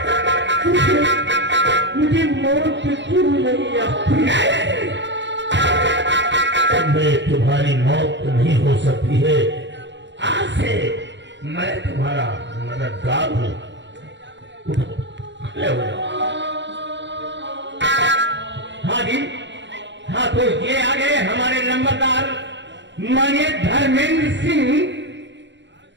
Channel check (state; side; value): late; left; 0.52 ms